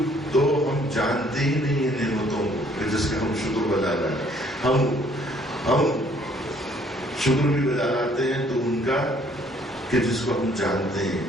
تو ہم جانتے ہی نہیں ہیں نعمتوں کو کہ جس کا ہم شکر بجا رہے ہیں، ہم شکر بھی بجا لاتے ہیں تو ان کا کہ جس کو ہم جانتے ہیں۔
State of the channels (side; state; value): both; normal; correlation 0.62